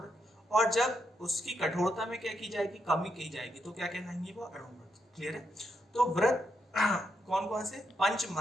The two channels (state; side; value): normal; both; correlation 0.80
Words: और जब उसकी कठोरता में क्या की जाएगी, कमी की जाएगी, तो क्या कहलाएंगे, वो अणुव्रत। क्लियर है। तो व्रत कौन कौन से, 5